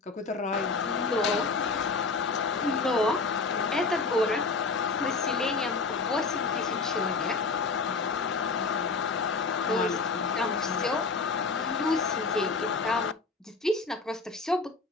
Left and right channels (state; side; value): quieter; right; 4.2 dB